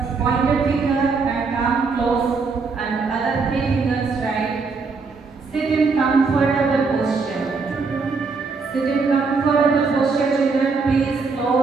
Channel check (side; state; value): left; quieter; 4.5 dB